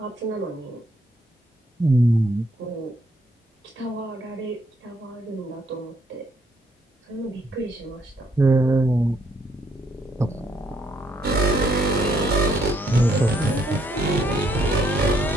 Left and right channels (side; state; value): both; normal; correlation 0.71